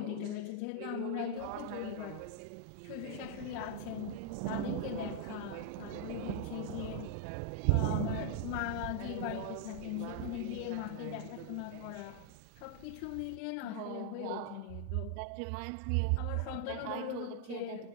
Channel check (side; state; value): both; different; correlation 0.00